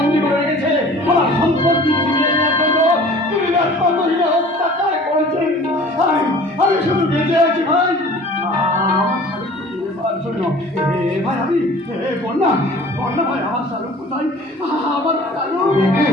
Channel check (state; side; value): normal; both; correlation 0.46